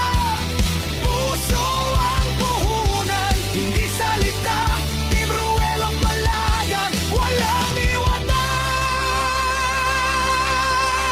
puso ang puhunan, hindi salita. Team Ruelok Malalag, walang iwanan.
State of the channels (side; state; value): both; identical; correlation 1.00